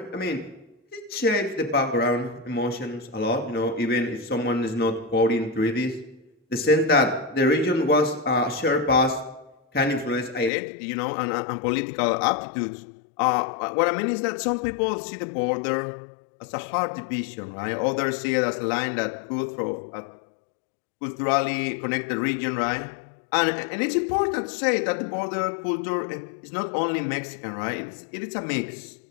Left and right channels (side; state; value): right; drops out; at 10.5 s